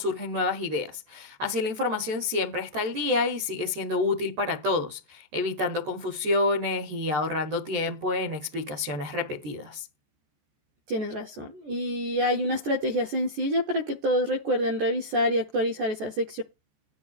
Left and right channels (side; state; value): left; late; 13 ms